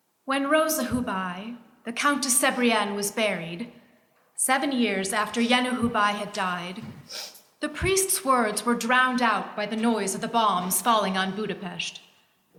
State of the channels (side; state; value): both; identical; correlation 1.00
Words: When Rosa Hubai, the Countess Sebrienne, was buried, 7 years after Yenu Hubai had died, the priest's words were drowned out by the noise of the bombs falling on Budapest.